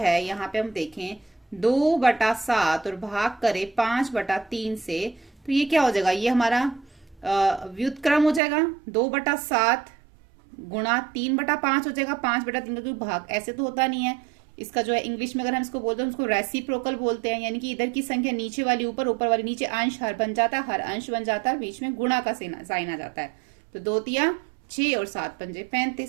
यहाँ पे हम देखें 2/7 और भाग करें 5/3 से, तो ये क्या हो जाएगा, ये हमारा व्युत्क्रम हो जाएगा। 2/7 गुणा 3/5 हो जाएगा, 5/3 का कोई भाग ऐसे तो होता नहीं है। इसका जो है इंग्लिश में अगर हम इसको बोलते हैं उसको रेसिप्रोकल बोलते हैं, यानी कि इधर की संख्या नीचे वाली ऊपर, ऊपर वाली नीचे, अंश हर बन जाता है, हर अंश बन जाता है, बीच में गुणा का साइन आ जाता है। तो 2 तिया 6 और 7 पंजे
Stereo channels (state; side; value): drops out; left; at 8.4 s